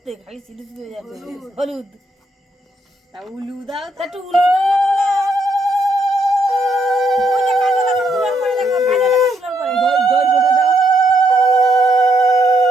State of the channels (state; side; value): normal; both; correlation 0.75